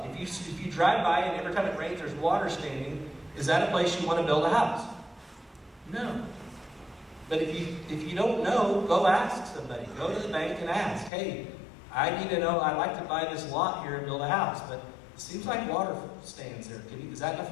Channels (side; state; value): right; drops out; at 11.1 s